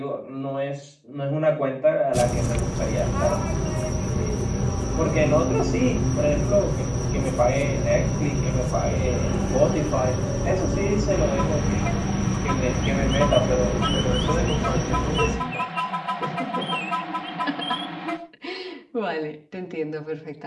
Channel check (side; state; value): both; identical; correlation 1.00